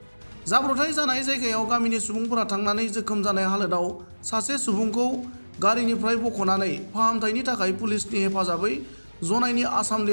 जाब्रबथाय जानाय जायगायाव गामिनि सुबुंफोरा थांनानै जोखोम जानाय हालोदाव सासे सुबुंखौ गारिनिफ्राय बख'नानै फाहामथायनि थाखाय पुलिसनि हेफाजाबै जनाइनि आसाम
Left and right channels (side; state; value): both; inverted; correlation -1.00